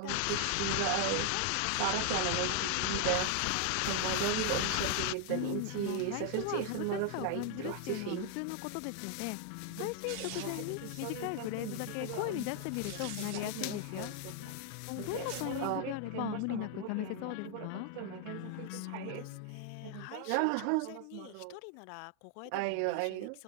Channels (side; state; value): both; different; correlation 0.00